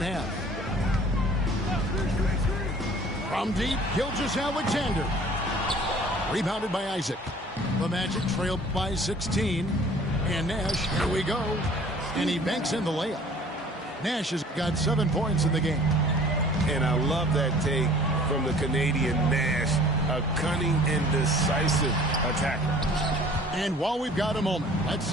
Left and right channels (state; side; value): normal; both; correlation 0.50